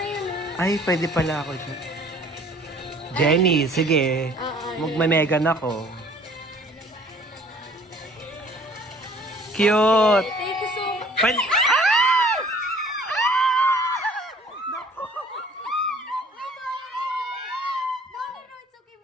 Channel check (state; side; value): normal; both; correlation 0.54